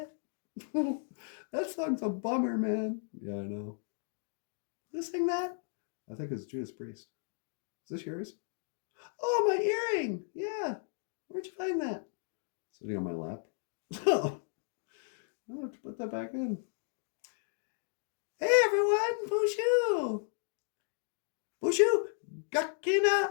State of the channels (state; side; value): silent; right; 55 dB below the other